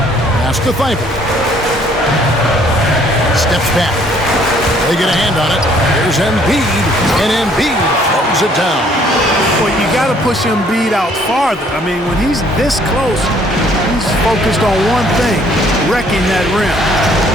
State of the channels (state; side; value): normal; both; correlation 0.62